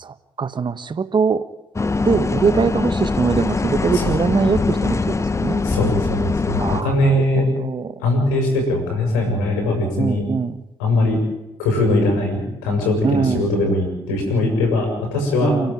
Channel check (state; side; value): normal; both; correlation 0.68